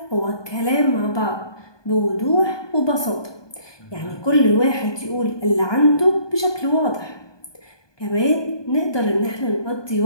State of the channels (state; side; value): late; right; 1.2 ms